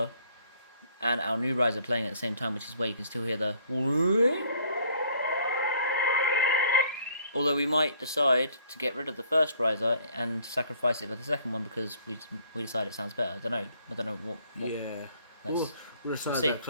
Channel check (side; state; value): both; inverted; correlation -0.60